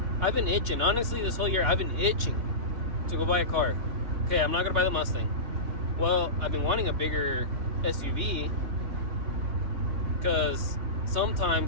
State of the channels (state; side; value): late; left; 3.5 ms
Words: I've been itching. Honestly, this whole year, I've been itching to go buy a car. Okay, I'm not gonna buy the Mustang. Well, I've been wanting a bigger SUV because